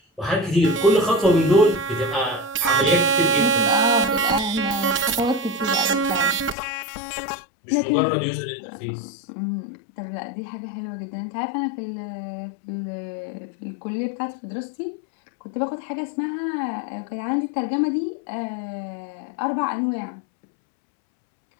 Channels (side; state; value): right; drops out; at 6.6 s